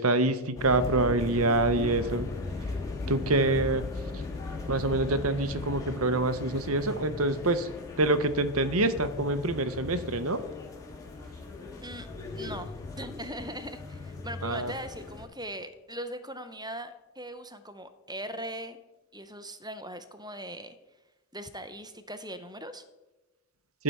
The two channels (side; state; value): both; normal; correlation 0.01